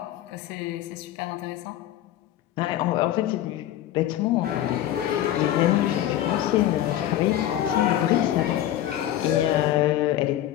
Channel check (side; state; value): right; quieter; 12.6 dB